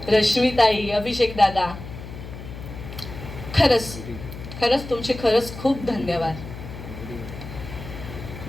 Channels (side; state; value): left; noise; hum, 11 dB below the sound